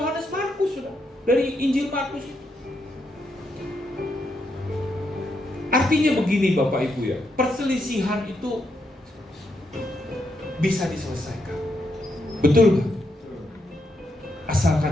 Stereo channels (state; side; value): normal; both; correlation 0.80